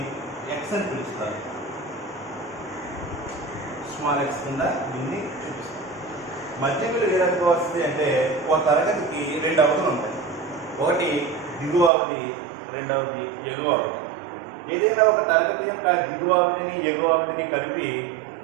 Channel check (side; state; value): left; drops out; at 11.9 s